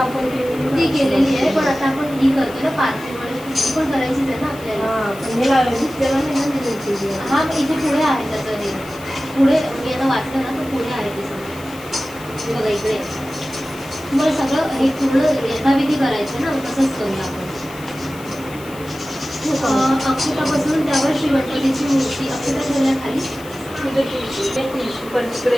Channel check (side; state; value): left; noise; hiss, 20 dB below the sound